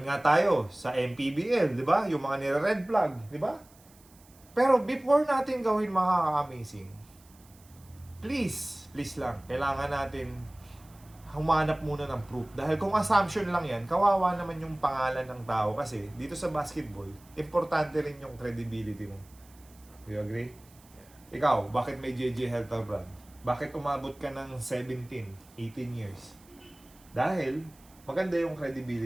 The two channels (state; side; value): noise; right; hiss, 27 dB below the sound